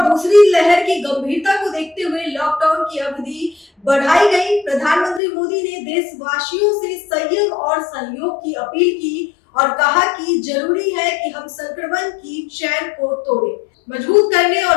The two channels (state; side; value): drops out; right; at 5.2 s